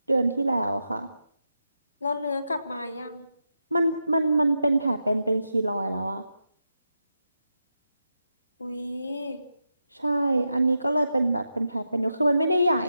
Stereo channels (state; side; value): inverted; both; correlation -0.88